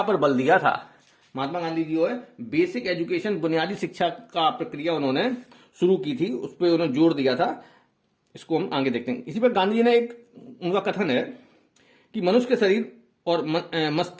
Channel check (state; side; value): identical; both; correlation 1.00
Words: पर बल दिया था। महात्मा गांधी जी जो है बेसिक एजुकेशन, बुनियादी शिक्षा का प्रक्रिया उन्होंने शुरू की थी, उस पर उन्होंने जोर दिया था। इसको हम आगे देखते हैं। इसी पर गांधी जी ने एक उनका कथन है कि मनुष्य के शरीर और